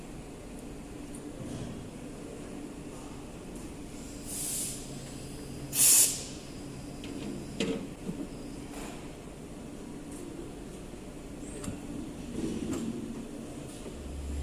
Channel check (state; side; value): identical; both; correlation 1.00